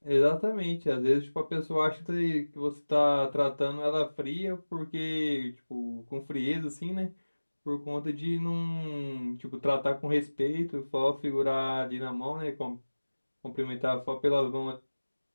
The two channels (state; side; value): inverted; both; correlation -1.00